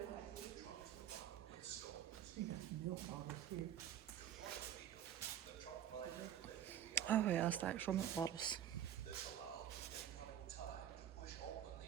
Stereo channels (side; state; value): left; quieter; 10.2 dB